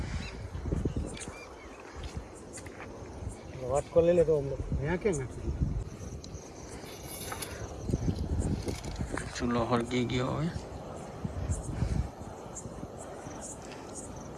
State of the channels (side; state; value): both; identical; correlation 1.00